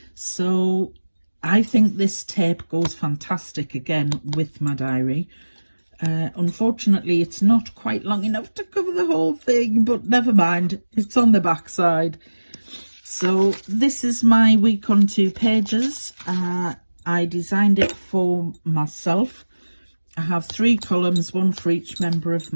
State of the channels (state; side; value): inverted; both; correlation -1.00